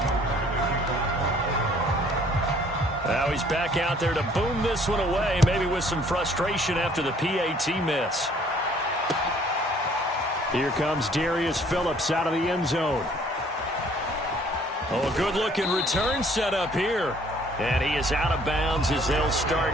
Now he's back out there to boom this one away, maybe with some frustration after the PAT miss. Here comes Darius Phillips out of the end zone. Oh, a good-looking return set up here. And he is out of bounds as they'll start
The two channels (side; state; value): both; normal; correlation 0.59